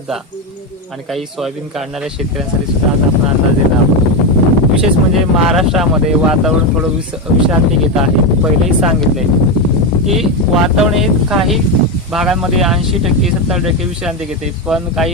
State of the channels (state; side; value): normal; both; correlation 0.10